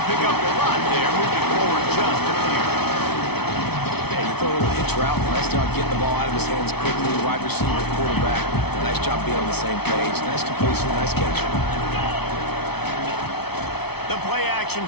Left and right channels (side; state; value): right; late; 0.98 ms